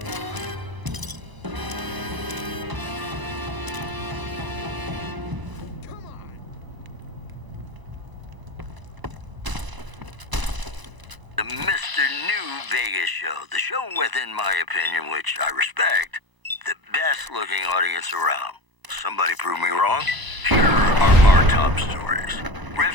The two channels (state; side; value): late; left; 1.0 ms